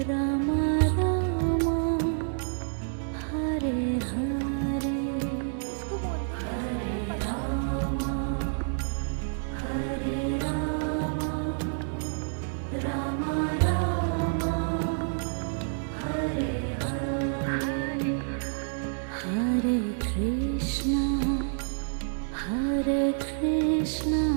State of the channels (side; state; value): left; silent; digital silence